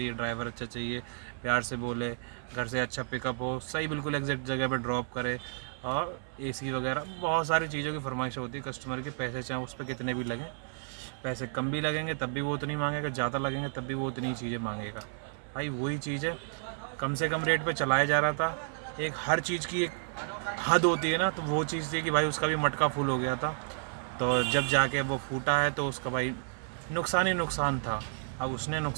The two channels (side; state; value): left; silent; 57 dB below the other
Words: ड्राइवर अच्छा चाहिए, प्यार से बोले, घर से अच्छा पिकअप हो, सही बिल्कुल एग्जैक्ट जगह पे ड्रॉप करे, और एसी वगैरह बहुत सारी चीज़ों की फरमाइशें होती है कस्टमर की। पैसे चाहे उस पर कितने भी लगें, पैसे कम भी लगेंगे तब भी वो उतनी मांगेगा, ज़्यादा लगेंगे तब भी वो उतनी चीज़ें मांगेगा। भाई वही चीज़ है, कम से कम रेट पे चलाया जा रहा था। एक हर चीज़ की एक हद होती है ना, तो वो चीज़ थी कि भाई उसका भी मटका फुल हो गया था। तो जब जाके वो फूटा है तो उसका भाई नुकसान ही नुकसान था। अब उसने